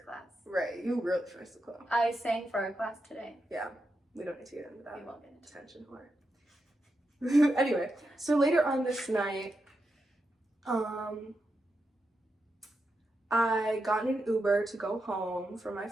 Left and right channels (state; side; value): normal; both; correlation 0.86